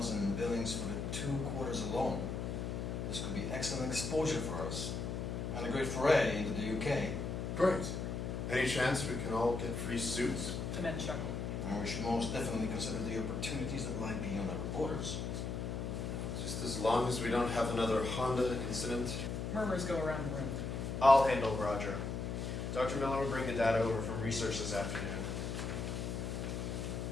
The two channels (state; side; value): noise; left; hum, 3 dB below the sound